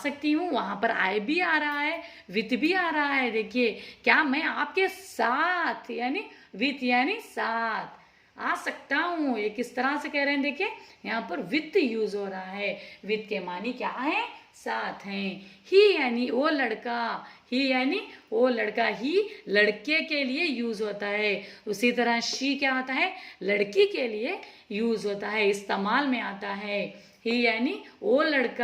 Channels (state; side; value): identical; both; correlation 1.00